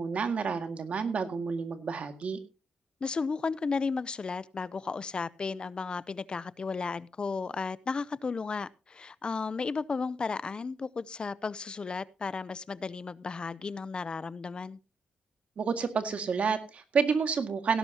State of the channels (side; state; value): both; normal; correlation 0.79